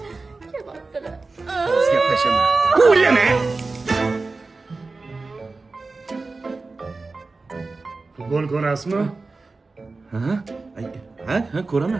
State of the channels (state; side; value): quieter; left; 3.7 dB